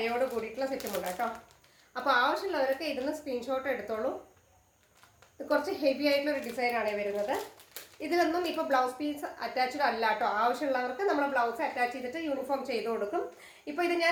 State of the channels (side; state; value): both; identical; correlation 1.00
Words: കൂടിയിട്ടുള്ള സെറ്റ് മുണ്ട് കേട്ടോ. അപ്പോൾ ആവശ്യമുള്ളവരൊക്കെ ഇതിന് സ്ക്രീൻഷോട്ട് എടുത്തോളൂ. ഇത് കുറച്ച് ഹെവി ആയിട്ടുള്ള ഒരു ഡിസൈനാണ് വരുന്നത്. ഇതിലൊന്നും ഇപ്പോൾ ബ്ലൗസ് പീസ് അറ്റാച്ച്ഡ് അല്ല കേട്ടോ. ആവശ്യമുള്ളവർക്ക് നമ്മൾ ബ്ലൗസ് അറ്റാച്ച് ചെയ്തിട്ട് യൂണിഫോം ചെയ്ത് കൊടുക്കും. ഇപ്പോൾ ഇത്